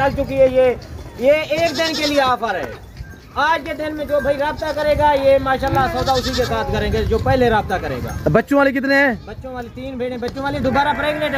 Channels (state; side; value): identical; both; correlation 1.00